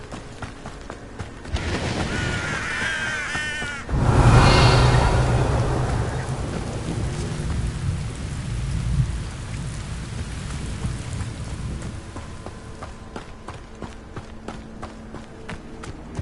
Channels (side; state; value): both; identical; correlation 1.00